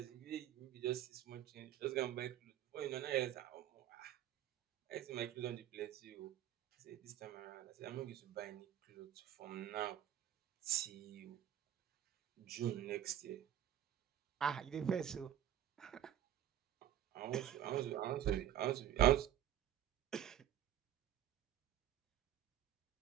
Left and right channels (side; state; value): left; quieter; 10.8 dB